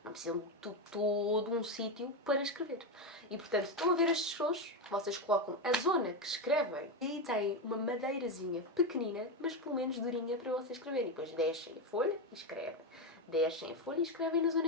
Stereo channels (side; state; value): both; normal; correlation 0.10